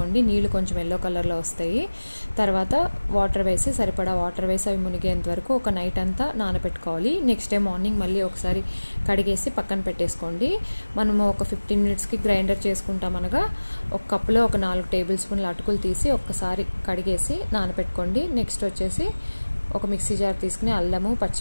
నీళ్ళు కొంచెం ఎల్లో కలర్లో వస్తాయి. తర్వాత వాటర్ వేసి సరిపడా వాటర్ వేసి అవి మునిగేంత వరకు ఒక నైట్ అంతా నానబెట్టుకోవాలి. నెక్స్ట్ డే మార్నింగ్ మళ్ళీ ఒకసారి కడిగేసి పక్కన పెట్టేసుకోండి. మనము ఒక 15 మినిట్స్కి గ్రైండర్ చేసుకుంటాం అనగా ఒక కప్పులో ఒక 4 టేబుల్ స్పూన్ల అటుకులు తీసి ఒక్కసారి కడిగేసి నానబెట్టుకోండి. నెక్స్ట్ వచ్చేసి ఒక మిక్సీ జార్ తీసుకుని అల్లము,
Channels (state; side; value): inverted; both; correlation -1.00